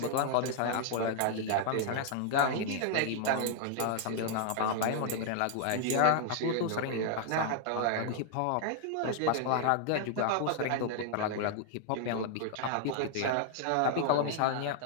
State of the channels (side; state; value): both; different; correlation 0.00